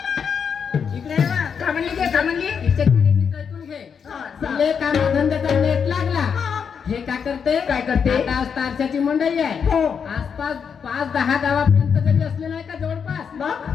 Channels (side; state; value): right; quieter; 6.8 dB